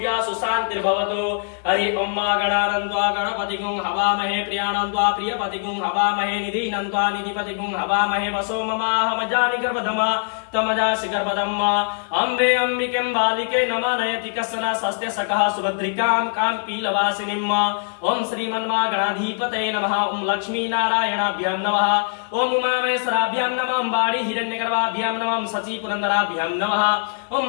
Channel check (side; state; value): right; silent; 59 dB below the other